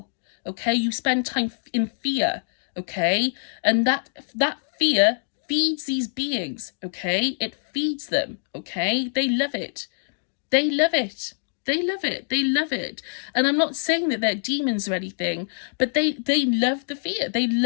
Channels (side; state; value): right; silent; digital silence